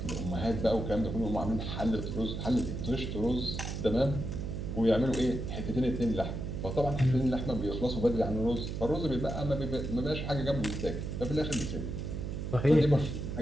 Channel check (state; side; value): noise; right; hum, 4 dB below the sound